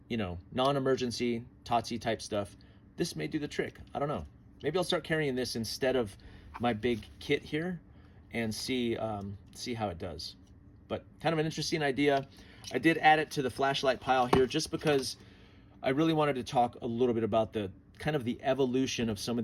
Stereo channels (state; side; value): identical; both; correlation 1.00